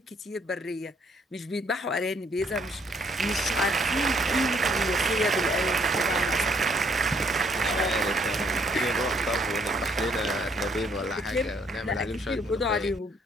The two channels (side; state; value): both; normal; correlation 0.67